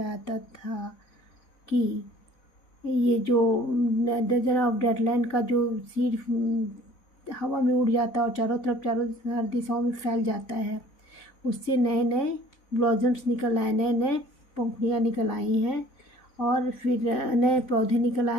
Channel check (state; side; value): late; right; 4.0 ms